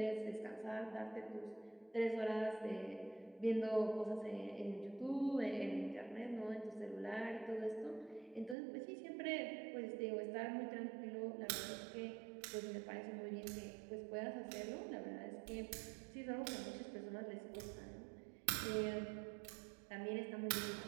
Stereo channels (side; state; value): left; drops out; at 8.6 s